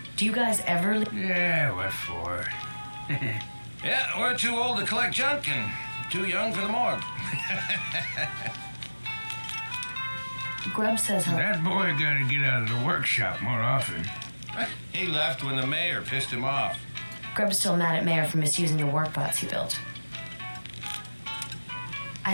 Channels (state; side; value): inverted; both; correlation -1.00